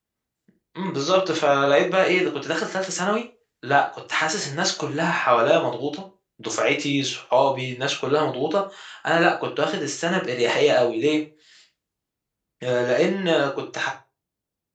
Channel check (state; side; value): identical; both; correlation 1.00